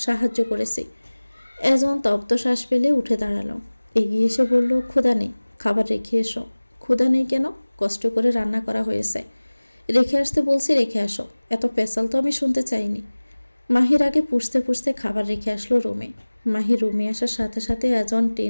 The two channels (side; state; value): both; inverted; correlation -1.00